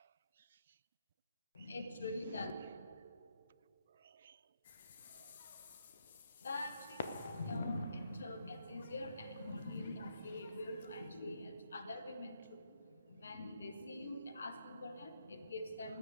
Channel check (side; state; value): both; inverted; correlation -0.77